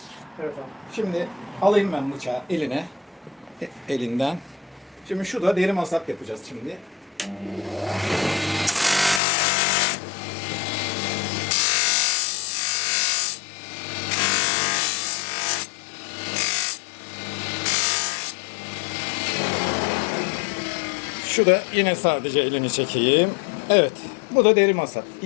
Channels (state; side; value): drops out; right; at 9.2 s